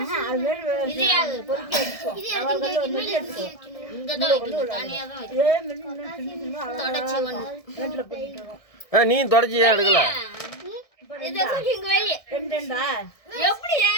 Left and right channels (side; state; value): right; late; 1.6 ms